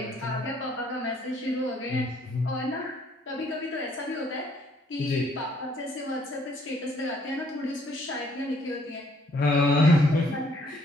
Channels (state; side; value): normal; both; correlation 0.65